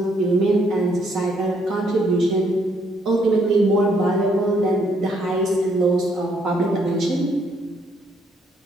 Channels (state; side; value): normal; both; correlation 0.70